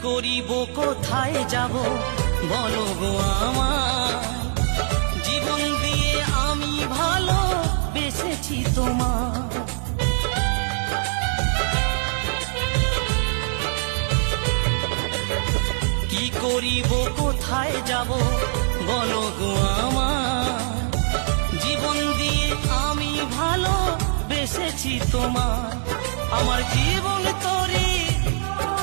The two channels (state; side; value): silent; left; 61 dB below the other